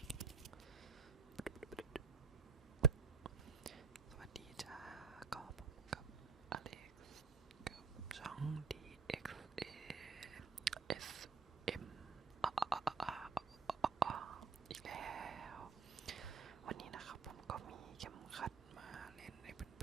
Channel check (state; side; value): quieter; left; 5.1 dB